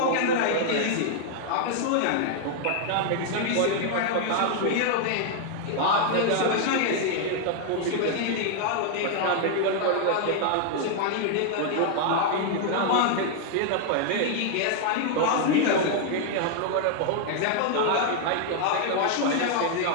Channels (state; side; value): different; both; correlation 0.00